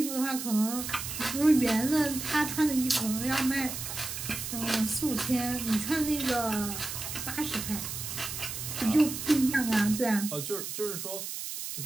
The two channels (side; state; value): right; noise; hiss, 6 dB below the sound